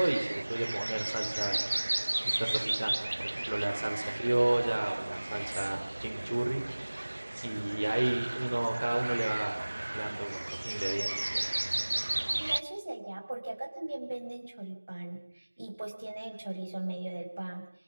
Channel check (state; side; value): inverted; both; correlation -1.00